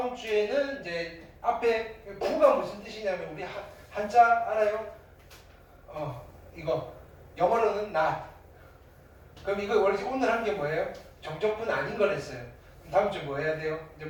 주에는 이제 앞에 부가 무슨 뜻이냐면 우리 한자 알아요? 이거 영어로는 not. 그럼 이거 원래 오늘 한 게 뭐예요? 정적분 아닌 걸 했어요. 그럼 다음 주에 뭐 해야 돼요? 이제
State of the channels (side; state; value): both; identical; correlation 1.00